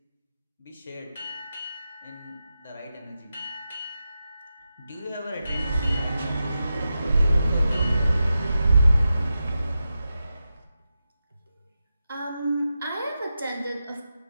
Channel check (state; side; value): inverted; both; correlation -0.90